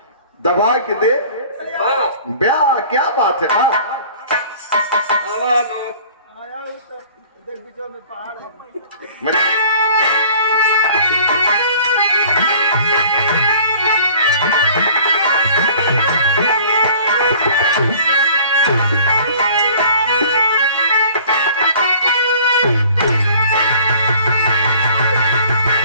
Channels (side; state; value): both; inverted; correlation -0.49